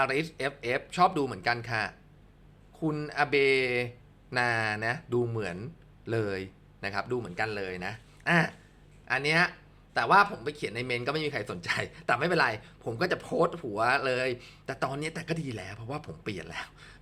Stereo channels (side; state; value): both; identical; correlation 1.00